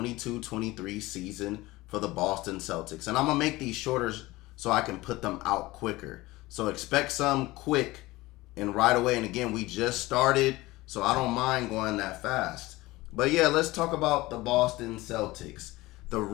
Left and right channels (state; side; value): quieter; right; 19.6 dB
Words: season for the Boston Celtics. And I'm going to make these shorter so I can put them out quicker. So expect some quick and right away. And again, we just started, so I don't mind going that fast. But yeah, let's talk about the Boston Celtics, the